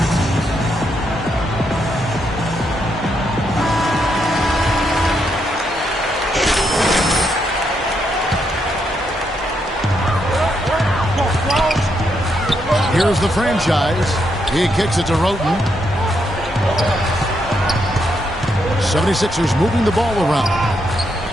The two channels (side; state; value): both; normal; correlation 0.79